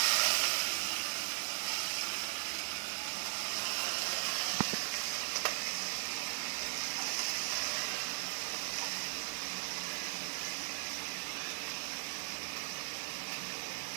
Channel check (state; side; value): silent; left; 52 dB below the other